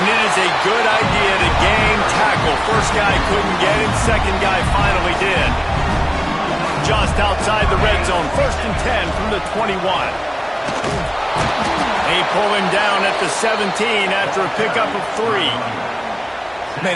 it is a good idea to game tackle. First guy couldn't get him, second guy finally did. Just outside the red zone, first and 10 from the 21. They pull him down at the 17 after a pickup of 3.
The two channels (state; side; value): identical; both; correlation 1.00